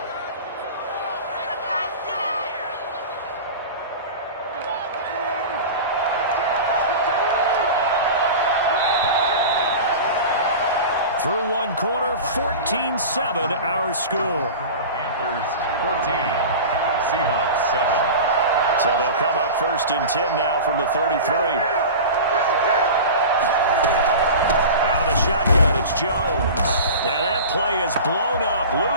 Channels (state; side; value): inverted; both; correlation -0.32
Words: Through one quarter, 14-7 our score. Panthers 14, Seahawks 7. So they'll come up 1st and 10 now from the 33. Out of the shotgun, it's Jones. And that play is blown up,